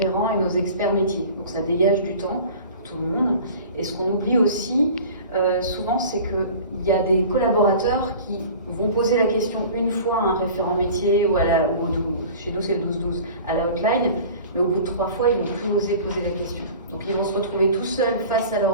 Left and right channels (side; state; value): both; inverted; correlation -0.41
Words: et nos experts métiers. Donc ça dégage du temps pour tout le monde. Et ce qu'on oublie aussi, souvent, c'est qu'il y a des collaborateurs qui vont poser la question une fois à un référent métier ou chez nous c'est le 12-12, à la hotline, mais au bout de 3 fois, ils ne vont plus oser poser la question. Donc ils vont se retrouver tout seuls face à